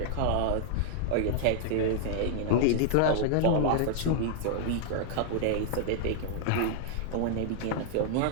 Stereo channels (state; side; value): different; both; correlation -0.01